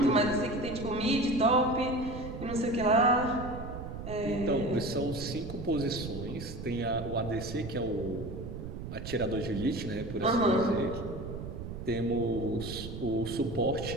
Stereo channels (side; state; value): right; noise; rumble, 9 dB below the sound